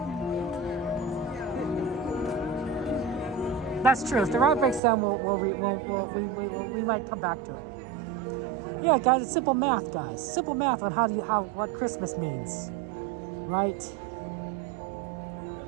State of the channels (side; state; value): left; drops out; at 4.8 s